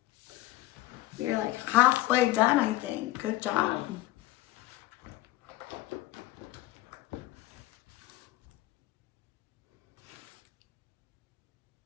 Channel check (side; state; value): right; quieter; 17.1 dB